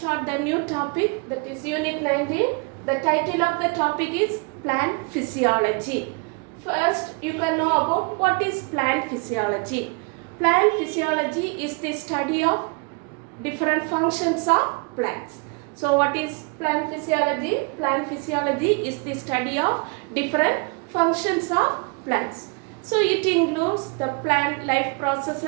the new topic, that is unit 19. The title of the topic is plant physiology. First you can know about what is plant physiology. Plant physiology is the study of different functions of plants. So what is plant physiology? Plant physiology is the study of different functions of plants. So it includes the plant life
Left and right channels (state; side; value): quieter; left; 32.4 dB